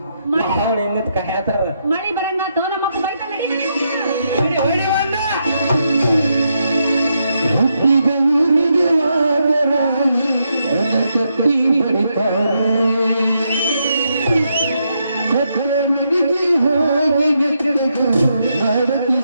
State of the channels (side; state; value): both; inverted; correlation -0.80